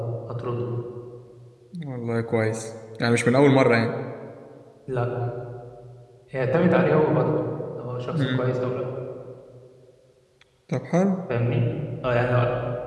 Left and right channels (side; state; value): both; identical; correlation 1.00